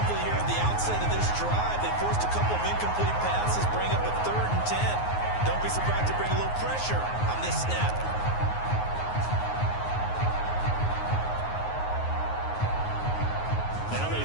here at the outset of this drive. They forced a couple of incomplete passes, bring up a 3rd and 10. Don't be surprised to bring a little pressure on this snap. Now they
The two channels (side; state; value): right; late; 9.5 ms